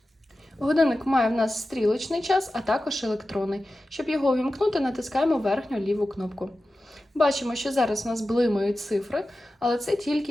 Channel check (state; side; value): normal; both; correlation 0.94